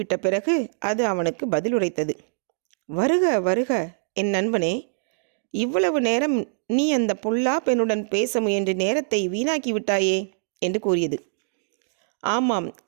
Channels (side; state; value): left; silent; digital silence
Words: பிறகு அது அவனுக்கு பதில் உரைத்தது. வருக வருக என் நண்பனே, இவ்வளவு நேரம் நீ அந்த பொல்லா பெண்ணுடன் பேச முயன்று நேரத்தை வீணாக்கி விட்டாயே என்று கூறியது. ஆமாம்,